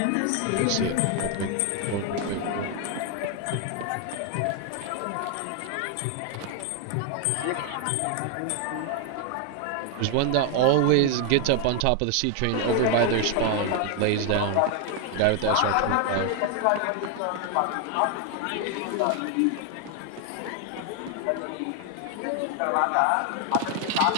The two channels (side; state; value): both; different; correlation 0.00